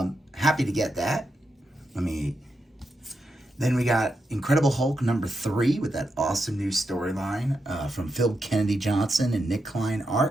Happy to get that. Then we got Incredible Hulk #3 with that awesome new storyline from Phil Kennedy Johnson and Nick Klein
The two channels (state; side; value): normal; both; correlation 0.85